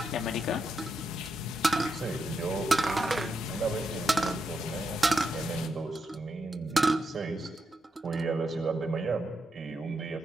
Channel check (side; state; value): both; normal; correlation 0.83